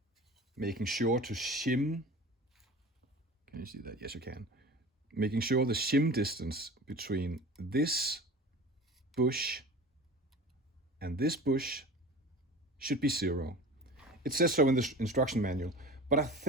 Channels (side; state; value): both; normal; correlation 0.37